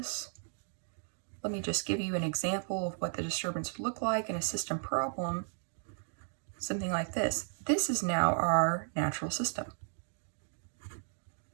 let me just give you an example of what the disturbance would look like in a system problem. Something like this. This is now our natural system.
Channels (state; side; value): silent; left; digital silence